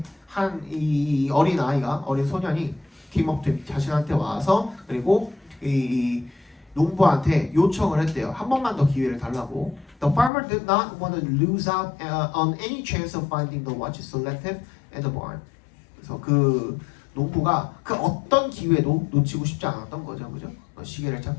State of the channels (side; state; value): right; drops out; at 10.3 s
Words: 이 어린 아이가 어린 소년이 came up to him, 자신한테 와서 그리고 농부한테 요청을 했대요. 한 번만 더 기회를 달라고. The farmer did not want to lose out on any chance of finding the watch selected at the barn. 그래서 그 농부가 그 어떤 기회도 놓치고 싶지 않았던 거죠, 그죠? 시계를